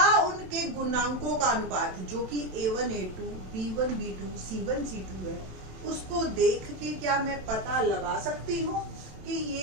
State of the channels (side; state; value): left; late; 27 ms